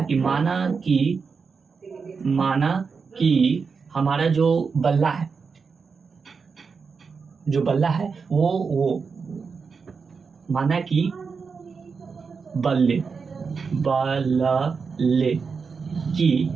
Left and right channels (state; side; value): quieter; left; 5.3 dB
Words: कि माना कि हमारा जो बल्ला है वो माना कि बल्ले की